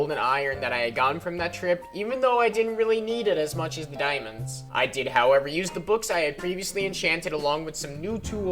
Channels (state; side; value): identical; both; correlation 1.00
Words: iron that I had gotten from that trip, even though I didn't really need it as much as the diamonds. I did, however, use the books I had previously enchanted along with some new